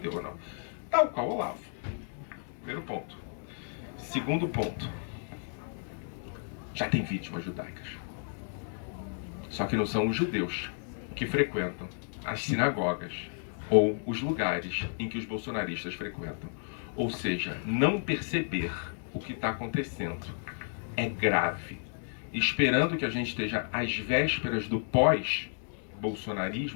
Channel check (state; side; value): silent; right; digital silence